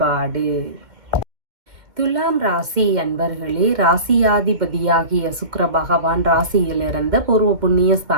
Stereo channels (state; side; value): late; left; 2.1 ms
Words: துலாம் ராசி அன்பர்களே, ராசியாதிபதியாகிய சுக்கிர பகவான் ராசியிலிருந்து பூர்வ புண்ணிய